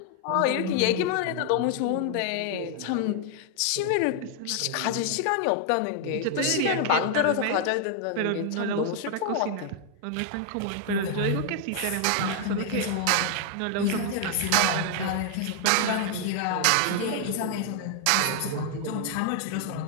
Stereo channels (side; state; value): both; different; correlation 0.00